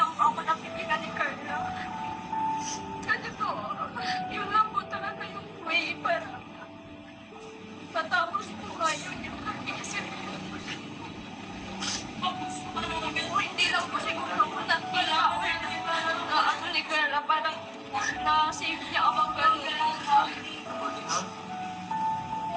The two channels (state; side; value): identical; both; correlation 1.00